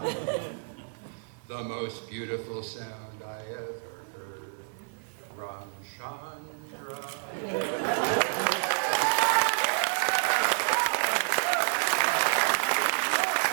the most beautiful sound I ever heard. Ramchandra.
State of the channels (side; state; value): left; silent; digital silence